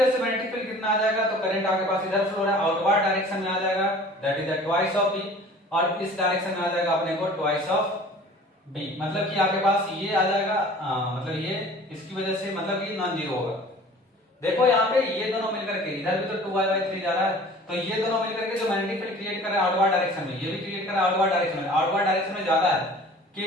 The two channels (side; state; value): both; normal; correlation 0.46